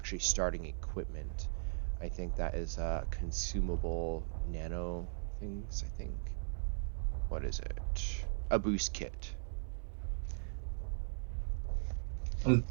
starting equipment. I think that is consumable nano things, I think. What is it? A boost kit. I'm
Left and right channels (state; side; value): silent; left; 52 dB below the other